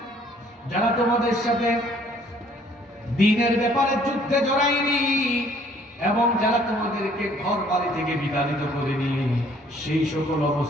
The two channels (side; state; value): both; normal; correlation 0.60